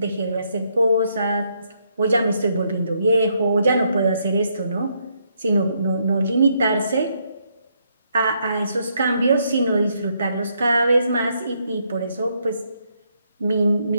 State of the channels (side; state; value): both; inverted; correlation -0.75